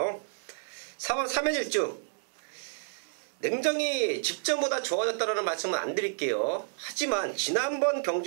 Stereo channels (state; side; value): silent; left; digital silence